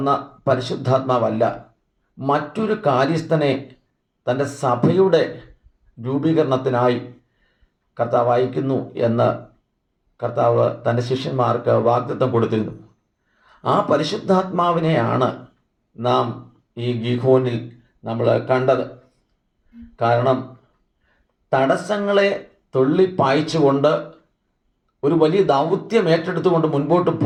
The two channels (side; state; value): both; identical; correlation 1.00